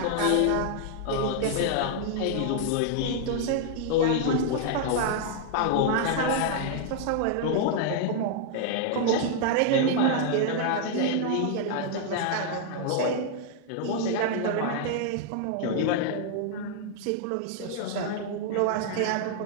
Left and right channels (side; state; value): both; different; correlation -0.01